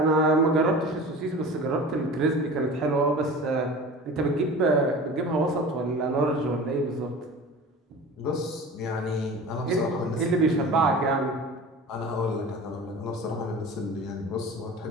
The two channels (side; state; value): both; normal; correlation 0.37